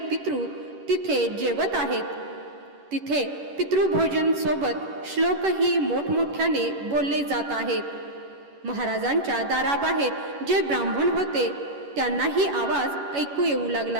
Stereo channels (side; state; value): left; late; 11 ms